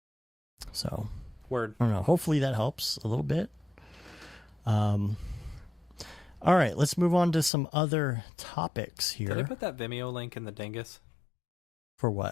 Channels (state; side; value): drops out; right; at 7.5 s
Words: So, word. I don't know. Hopefully that helps a little bit. All right, let's move on to some other topics here. Did I put that Vimeo link in the dingus? For